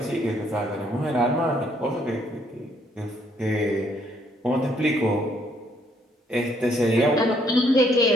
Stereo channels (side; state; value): both; normal; correlation 0.68